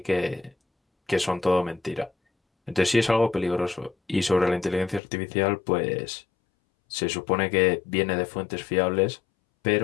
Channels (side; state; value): right; drops out; at 5.0 s